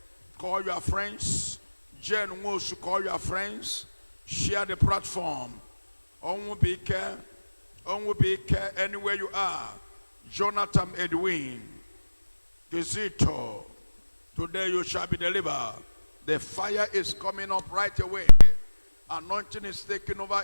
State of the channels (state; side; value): inverted; both; correlation -1.00